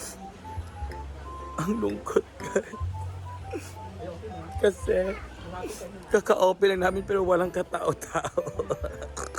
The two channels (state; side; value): identical; both; correlation 1.00